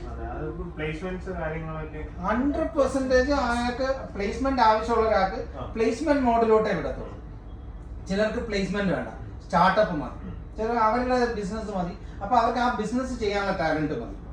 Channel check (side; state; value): both; identical; correlation 1.00